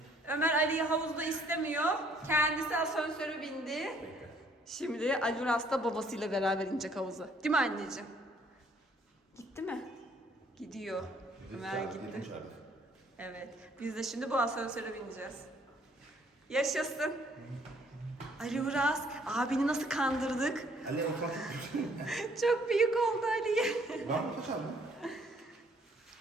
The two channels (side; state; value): both; normal; correlation 0.63